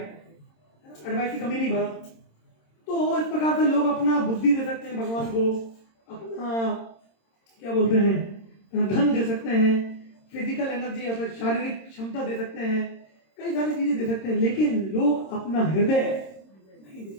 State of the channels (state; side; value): late; right; 26 ms